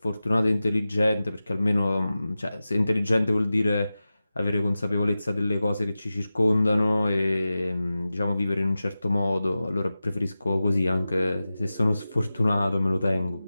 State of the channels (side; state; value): both; inverted; correlation -0.95